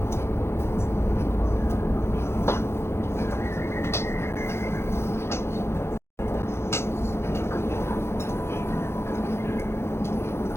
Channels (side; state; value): right; late; 0.12 ms